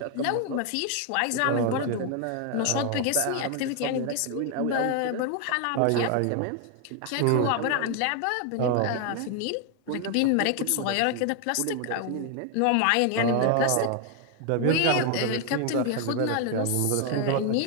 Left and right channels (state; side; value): different; both; correlation 0.00